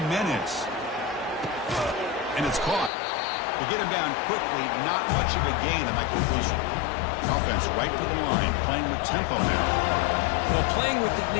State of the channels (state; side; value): drops out; right; at 2.9 s